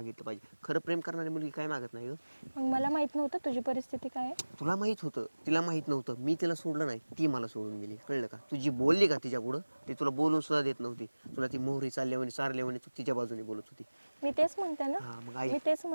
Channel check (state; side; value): inverted; both; correlation -1.00